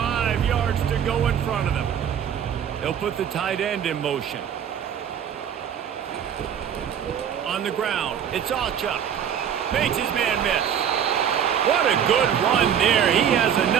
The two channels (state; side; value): quieter; left; 8.7 dB